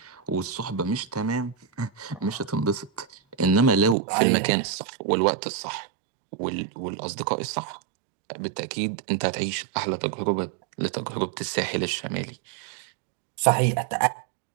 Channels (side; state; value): left; drops out; at 4.0 s